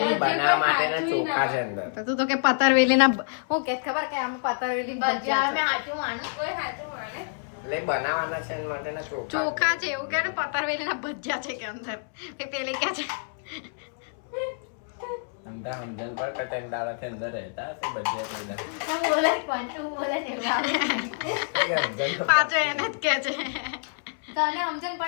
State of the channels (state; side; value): silent; right; 60 dB below the other